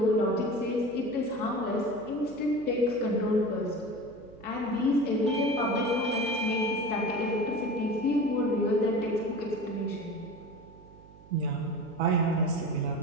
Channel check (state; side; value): noise; right; hum, 22 dB below the sound